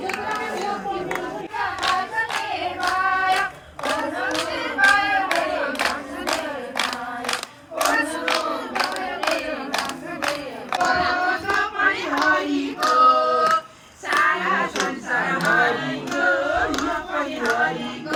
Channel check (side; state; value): both; identical; correlation 1.00